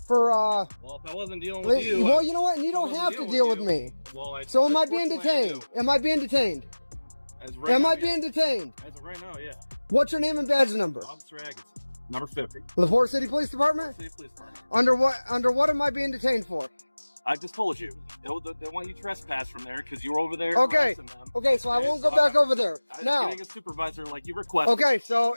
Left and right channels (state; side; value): inverted; both; correlation -1.00